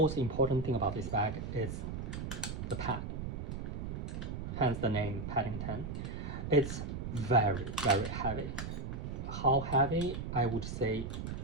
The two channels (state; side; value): noise; right; rumble, 5 dB below the sound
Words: important thing about this bag is the pad. Hence the name Paddington. It's very, very heavy. How heavy? I would say